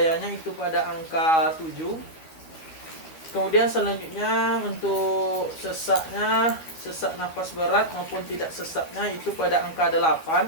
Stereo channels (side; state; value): right; late; 12 ms